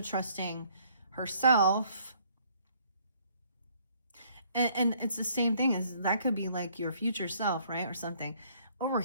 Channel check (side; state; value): both; inverted; correlation -0.63